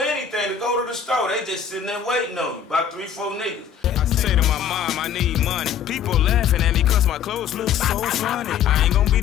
to go to the store. They just sitting there waiting on you. About 3, 4 niggas. I say to my mom, I need money. People laughing at me cause my clothes look so funny. I ain't gonna be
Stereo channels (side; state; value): right; quieter; 8.0 dB